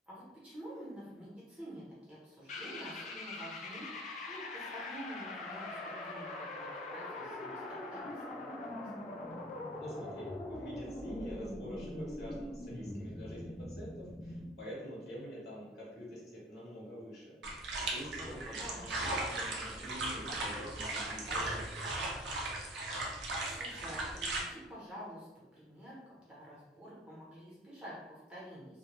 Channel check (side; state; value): both; normal; correlation 0.43